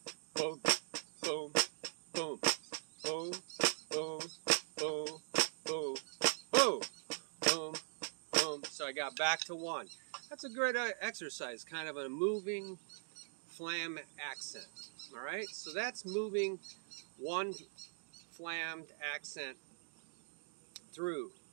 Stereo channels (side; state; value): left; silent; digital silence